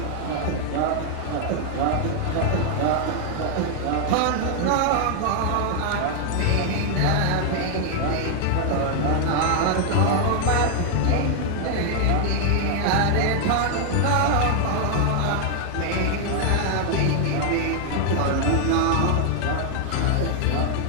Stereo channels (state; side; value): different; both; correlation 0.00